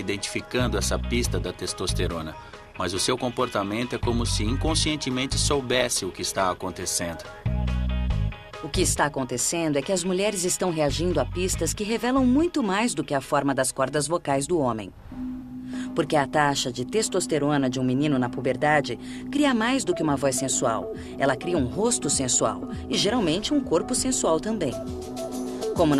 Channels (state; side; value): identical; both; correlation 1.00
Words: essa pista da testosterona, mas o seu comportamento é como se inconscientemente soubesse o que está acontecendo. O que está acontecendo é que as mulheres estão reagindo a pistas que revelam muito mais do que a forma das cordas vocais do homem. Porque a taxa de testosterona de um menino na puberdade cria mais do que uma voz sensual. Ela cria um rosto sensual e, geralmente, um corpo sensual também. Como